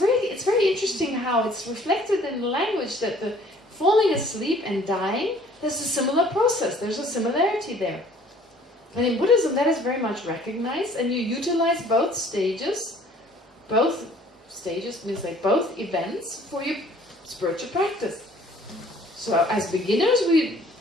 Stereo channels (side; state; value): both; normal; correlation 0.55